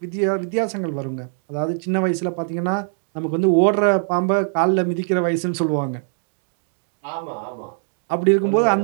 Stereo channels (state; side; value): silent; left; digital silence